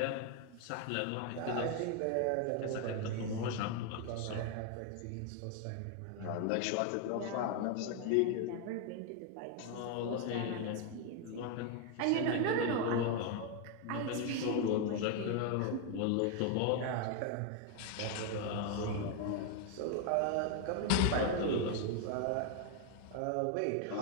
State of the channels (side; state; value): both; different; correlation 0.01